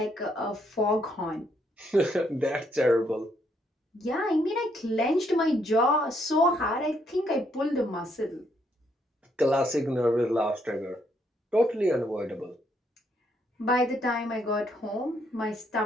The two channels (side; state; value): both; normal; correlation 0.73